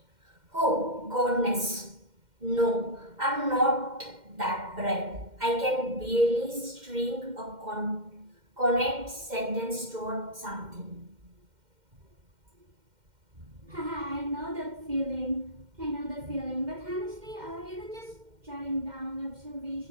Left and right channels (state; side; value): late; left; 2.1 ms